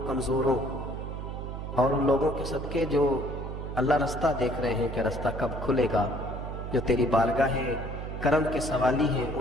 کمزوروں اور ان لوگوں کے صدقے جو اللہ رستہ دیکھ رہے ہیں کہ رستہ کب کھلے گا، جو تیری بارگاہ کرم کے سوالی ہیں،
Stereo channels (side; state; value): right; noise; hum, 7 dB below the sound